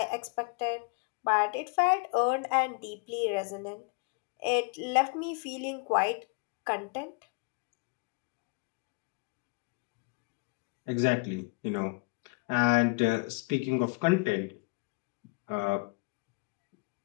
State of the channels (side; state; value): right; quieter; 30.7 dB